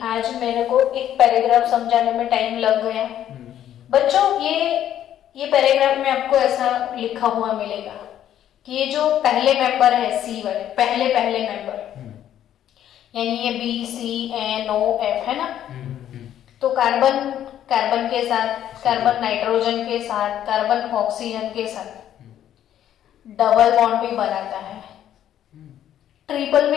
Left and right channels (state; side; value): quieter; right; 11.0 dB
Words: आज मेरे को एक पैराग्राफ समझाने में टाइम लग गया बच्चों। ये पैराग्राफ में आपको ऐसा लिखा हुआ मिलेगा कि ये जो पहले मेंबर है C वाले, पहले मेंबर, यानी ये B C N O F है ना, तो कार्बन के साथ, कार्बन नाइट्रोजन के साथ, कार्बन ऑक्सीजन के साथ डबल बॉन्ड भी बनाता है, ट्रिपल